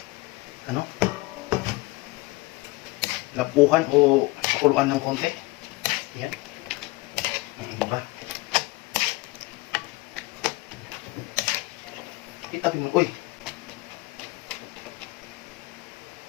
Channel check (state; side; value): quieter; right; 22.0 dB